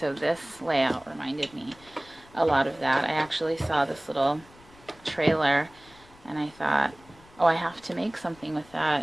this layout reminded me a lot of that. I actually saw this little trailer, and I thought, oh, I have to make something with that.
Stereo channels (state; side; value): noise; left; rumble, 25 dB below the sound